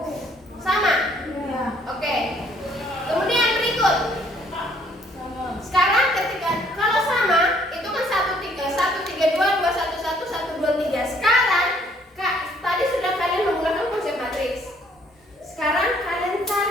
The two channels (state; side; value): normal; both; correlation 0.63